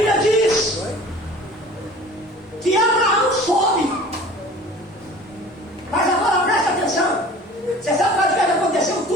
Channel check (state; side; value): normal; both; correlation 0.44